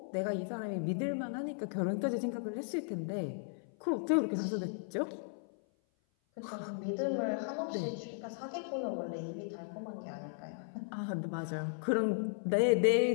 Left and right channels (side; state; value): right; silent; 54 dB below the other